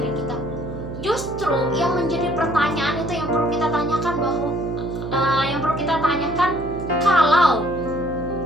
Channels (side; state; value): right; noise; hum, 8 dB below the sound